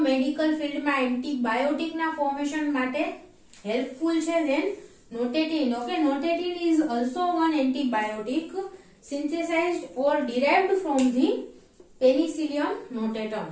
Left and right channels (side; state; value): both; identical; correlation 1.00